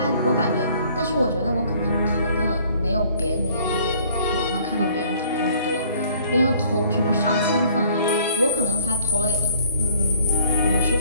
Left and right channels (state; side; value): inverted; both; correlation -0.58